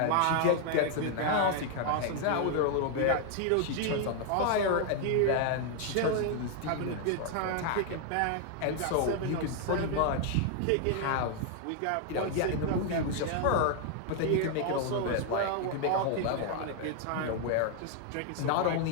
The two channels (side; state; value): both; different; correlation 0.00